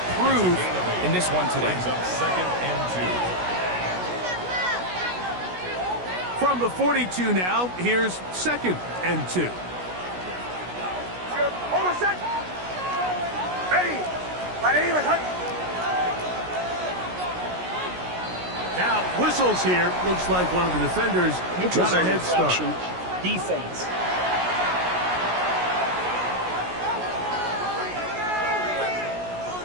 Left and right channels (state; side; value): late; left; 16 ms